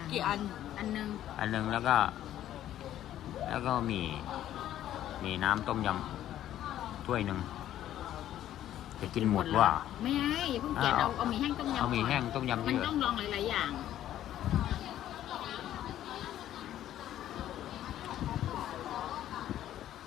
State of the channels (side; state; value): right; quieter; 12.2 dB